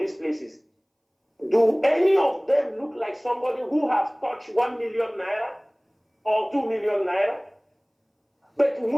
places. Do any of them look like somebody who has touched 1 million naira or 2 million naira? But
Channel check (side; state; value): both; identical; correlation 1.00